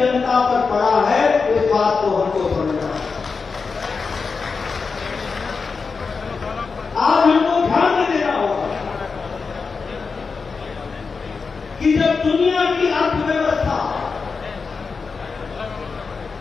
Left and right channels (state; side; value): quieter; right; 4.9 dB